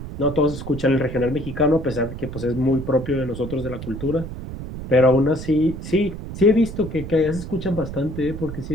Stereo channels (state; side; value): noise; right; rumble, 9 dB below the sound